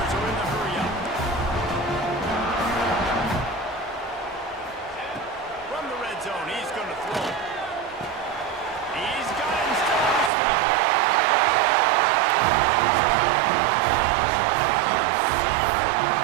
are in the hurry-up. From the red zone, he's going to throw. He's got him still on his feet.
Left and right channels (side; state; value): left; drops out; at 10.3 s